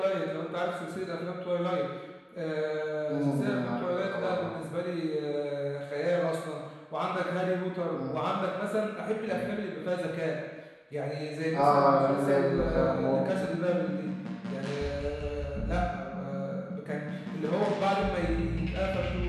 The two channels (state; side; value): identical; both; correlation 1.00